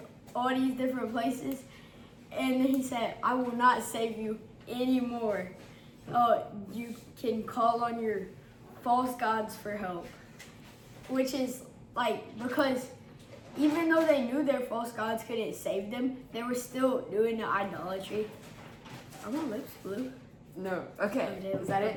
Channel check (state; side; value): identical; both; correlation 1.00